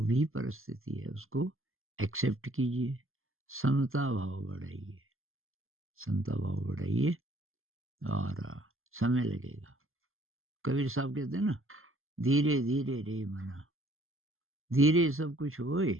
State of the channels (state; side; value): late; left; 0.60 ms